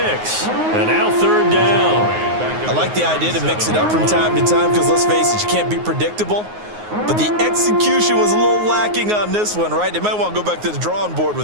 And now 3rd down. I like the idea to mix it up from time to time because, let's face it, you can't be predictable. But the execution was a little lacking on this one, right? They might want to go back to the drawing board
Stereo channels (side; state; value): left; late; 9.5 ms